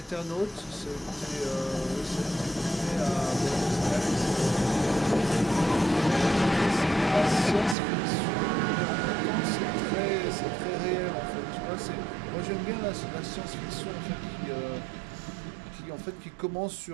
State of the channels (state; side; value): drops out; left; at 7.8 s